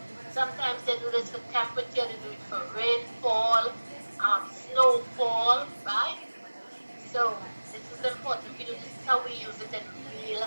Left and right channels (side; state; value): both; inverted; correlation -1.00